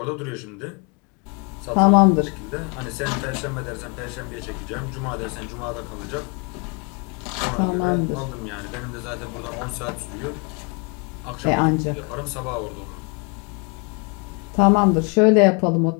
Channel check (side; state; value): right; quieter; 33.6 dB